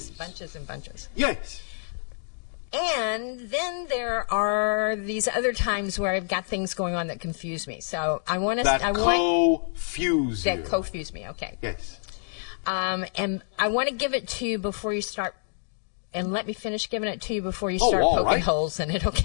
Bunches and bunches. Yes. And then there are these other times where I've got things going on that confuse me. So I want to. That confuse you. That confuse me. Okay. Yes. And I want to give it to you before you start, and let me finish giving it to you before you start poking holes in it,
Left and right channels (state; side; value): silent; right; digital silence